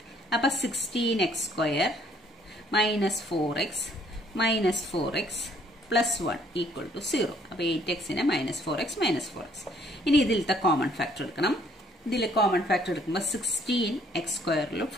അപ്പൊ 16x² -4x plus 1 equal to 0. അപ്പൊ 8xനെ -4x -4x. ഇനി ഇതിലത്തെ കോമൺ ഫാക്ടർ എടുക്കണം. ഇതിൽ കോമൺ ഫാക്ടർ എടുക്കുമ്പോൾ 16x²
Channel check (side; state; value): both; normal; correlation 0.63